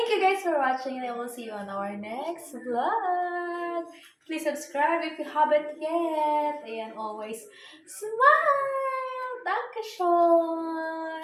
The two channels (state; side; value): identical; both; correlation 1.00